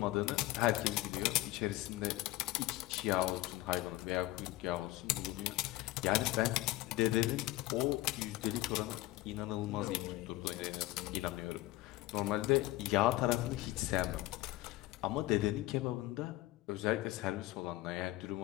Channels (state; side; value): quieter; right; 17.7 dB